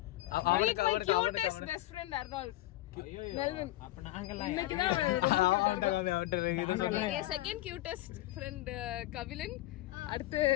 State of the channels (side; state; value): right; quieter; 16.9 dB